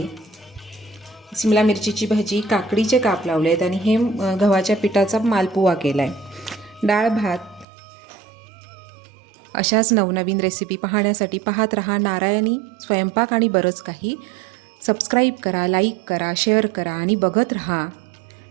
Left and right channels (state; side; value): drops out; left; at 7.7 s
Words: सिमला मिरचीची भजी, काकडीचे काप लावले आहेत आणि हे गव्हाच्या पिठाचा मालपुवा केला आहे. डाळ भात. अशाच नवनवीन रेसिपी पाहण्यासाठी पाहत रहा नारायणी स्वयंपाक आणि बरंच काही. सबस्क्राईब करा, लाईक करा, शेअर करा आणि बघत रहा.